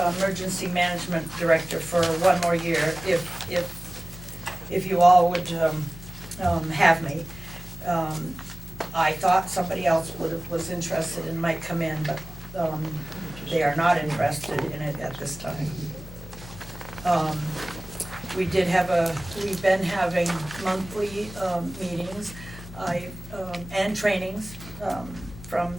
Emergency Management Director for one more year, if you all would, have me. I thought somebody else was interested and might come in, but, they are not interested in it at this time. We've been having monthly, meetings, and trainings, from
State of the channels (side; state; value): left; noise; hum, 14 dB below the sound